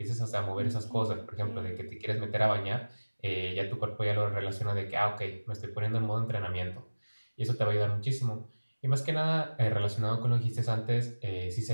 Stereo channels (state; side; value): inverted; both; correlation -1.00